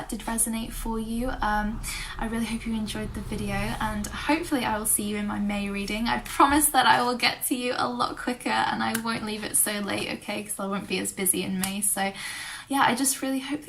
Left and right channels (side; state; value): both; identical; correlation 1.00